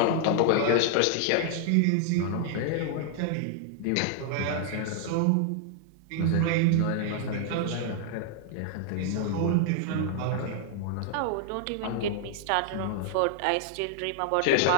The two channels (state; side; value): different; both; correlation 0.00